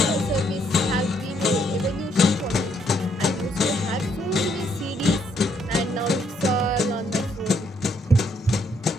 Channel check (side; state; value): both; normal; correlation 0.71